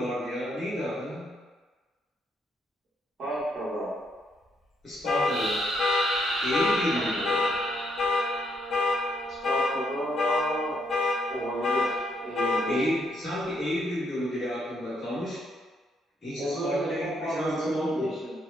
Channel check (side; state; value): both; normal; correlation 0.74